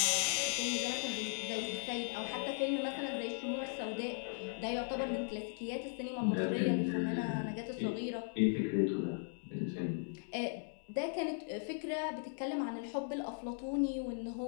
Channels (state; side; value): silent; right; digital silence